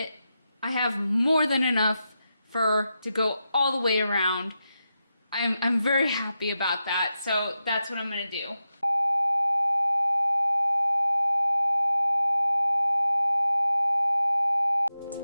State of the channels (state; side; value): inverted; both; correlation -0.90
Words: I have more than enough fur to go all the way around. I'm very happy about that, so that's what I'm gonna do.